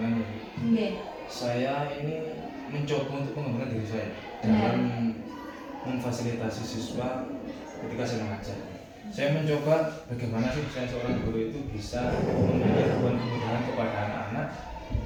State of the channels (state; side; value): identical; both; correlation 1.00